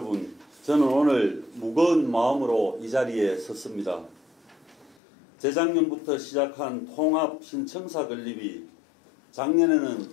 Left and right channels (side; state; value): right; drops out; at 5.0 s